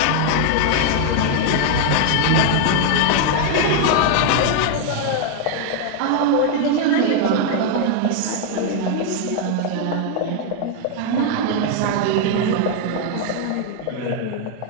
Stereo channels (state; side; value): different; both; correlation 0.00